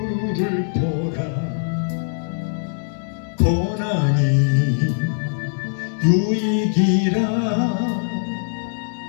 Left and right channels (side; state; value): right; silent; digital silence